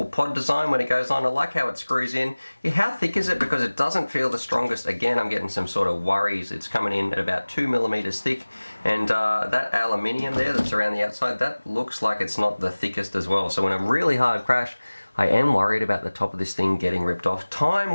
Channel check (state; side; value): inverted; both; correlation -1.00